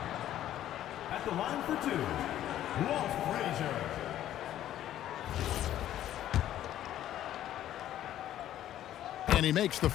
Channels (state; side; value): quieter; right; 12.2 dB